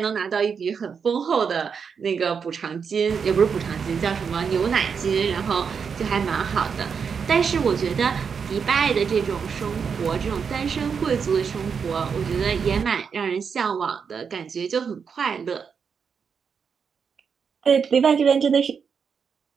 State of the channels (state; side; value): quieter; left; 6.3 dB